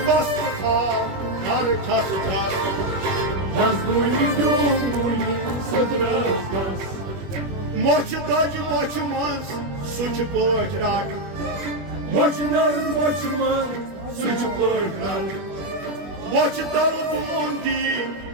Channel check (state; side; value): late; left; 21 ms